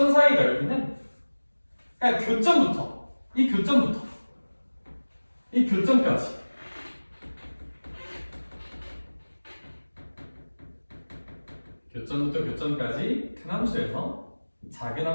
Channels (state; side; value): inverted; both; correlation -1.00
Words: 사이 넓이는 그냥 교점부터 이 교점까지 교점부터 교점까지 큰 함수에서 작은